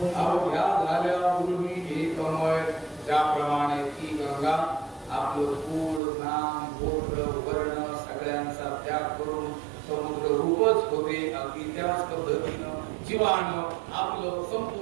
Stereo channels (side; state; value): left; drops out; at 6.0 s